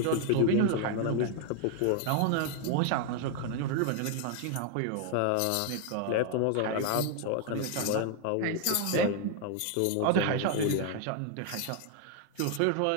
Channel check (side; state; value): both; different; correlation 0.00